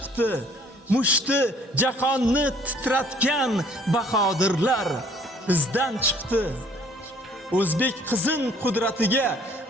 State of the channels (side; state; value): both; normal; correlation 0.58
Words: Mushti jahonni titratgan bahodirlar izdan chiqdi. O'zbek qizin qudratiga